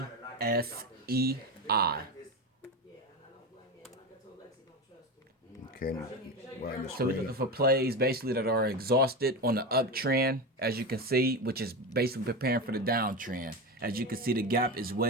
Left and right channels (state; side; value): normal; both; correlation 0.20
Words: ASEI. Okay. So we're looking for plays basically that are exhausted on the uptrend, as you can see, which is basically preparing for the downtrend. As you can see, the gap is